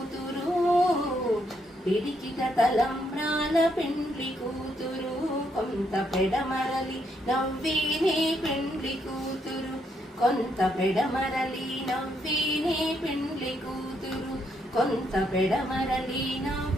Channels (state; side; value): normal; both; correlation 0.76